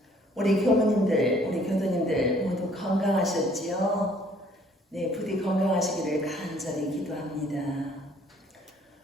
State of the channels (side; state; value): both; normal; correlation 0.60